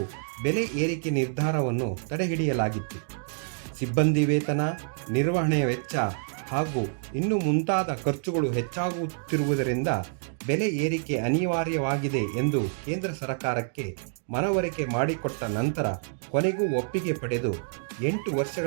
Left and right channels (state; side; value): silent; left; digital silence